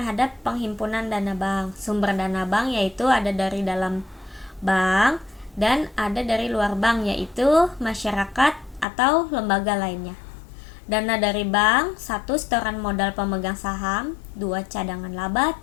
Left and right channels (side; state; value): right; drops out; at 8.8 s